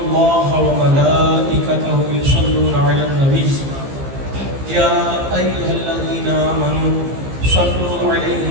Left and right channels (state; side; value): late; left; 15 ms